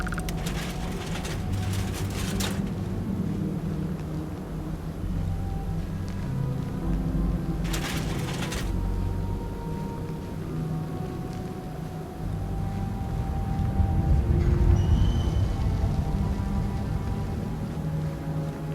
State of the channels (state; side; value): identical; both; correlation 1.00